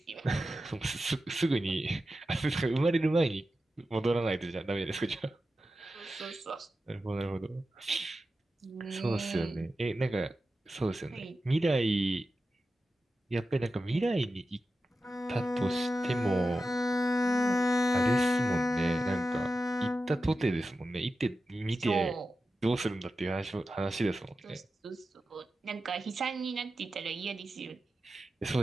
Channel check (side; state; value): both; normal; correlation 0.92